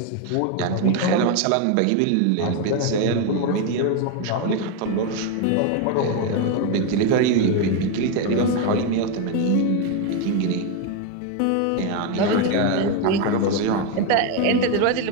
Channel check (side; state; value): both; different; correlation 0.02